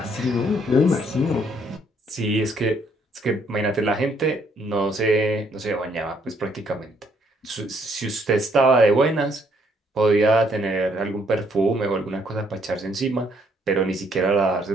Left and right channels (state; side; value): normal; both; correlation 0.68